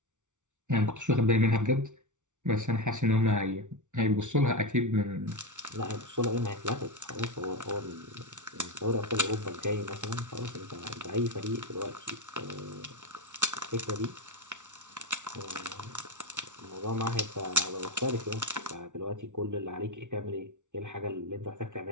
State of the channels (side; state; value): left; late; 0.86 ms